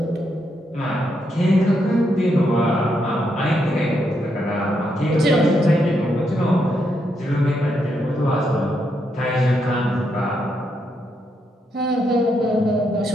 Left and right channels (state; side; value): normal; both; correlation 0.79